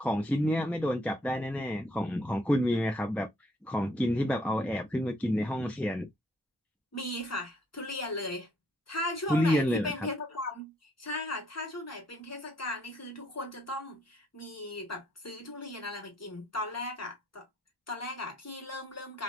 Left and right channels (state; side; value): normal; both; correlation 0.69